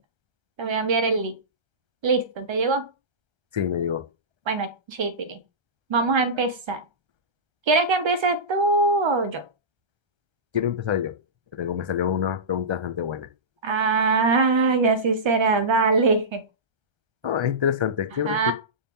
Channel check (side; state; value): left; late; 1.3 ms